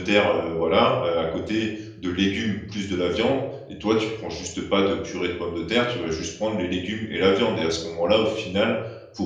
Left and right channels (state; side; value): identical; both; correlation 1.00